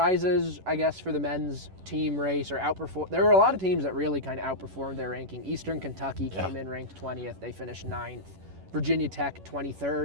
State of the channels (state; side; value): late; left; 11 ms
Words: I guess, for the men's team race, or outperform. There were a lot of teams that really kind of outperformed their ranking. Eastern Kentucky came in ranked 20th. They finished 9th. Virginia Tech,